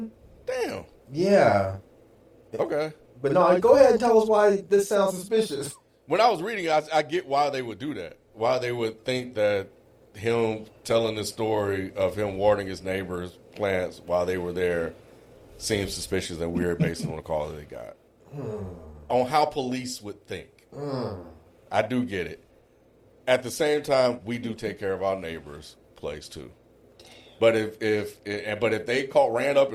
Damn. Yeah. Okay. But no, go ahead and tell us why this sounds suspicious. When I was reading it, I get why they would do that. Why they would think that him telling the story of him watering his neighbor's plants while they were there seems suspicious and weird based on the call that they got. On how police would think. I do get it. At the same time, we do take care of our neighbor's place too. But if they ran up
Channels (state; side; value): identical; both; correlation 1.00